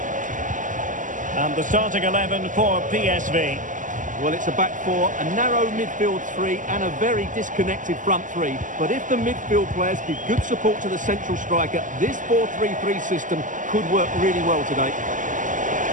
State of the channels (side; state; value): left; late; 0.37 ms